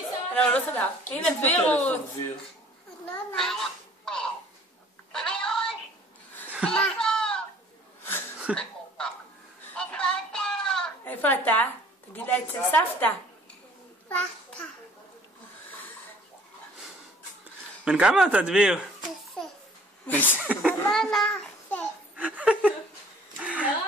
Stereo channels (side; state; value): both; normal; correlation 0.54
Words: לא, הוא לא סגר. הנה דבירות. איפה אתה? תגיד לה אצל סבתא. בן כמה אתה, דביר?